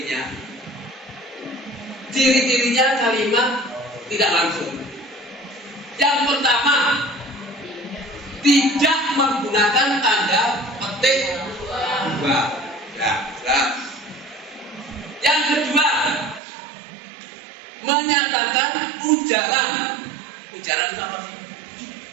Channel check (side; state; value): left; drops out; at 16.4 s